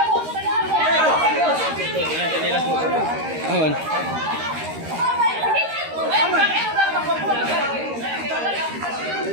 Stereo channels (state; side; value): late; left; 13 ms